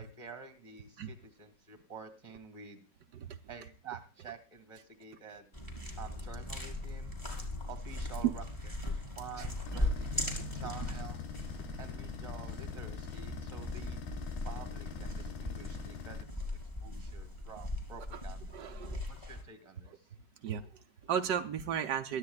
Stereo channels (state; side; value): late; right; 5.3 ms